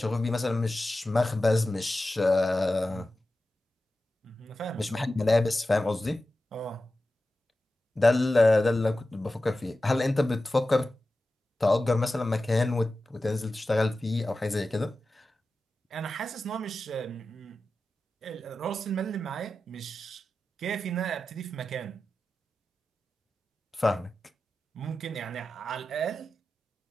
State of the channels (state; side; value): normal; both; correlation 0.93